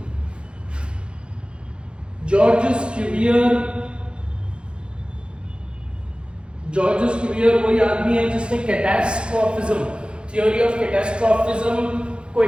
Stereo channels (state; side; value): late; left; 0.055 ms